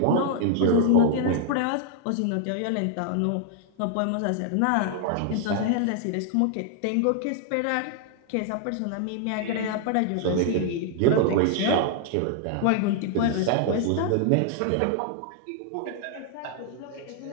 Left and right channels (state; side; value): different; both; correlation 0.00